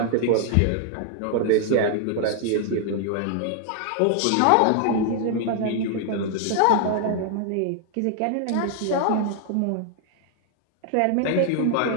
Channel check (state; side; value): different; both; correlation 0.00